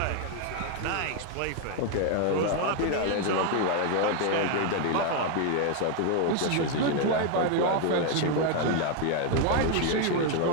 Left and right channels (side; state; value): both; different; correlation 0.01